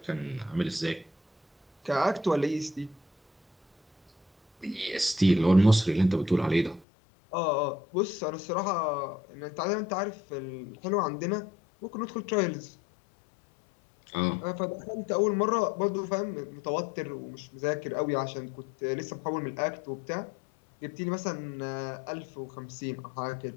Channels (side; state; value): right; drops out; at 6.9 s